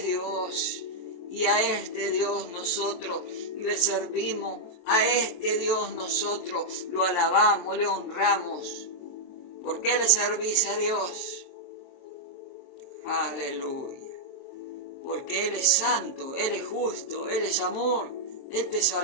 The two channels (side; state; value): right; late; 23 ms